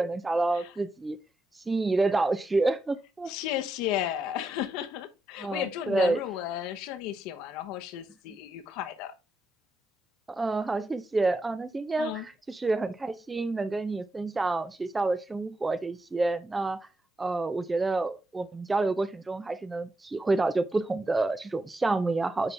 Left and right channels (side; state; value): both; normal; correlation 0.84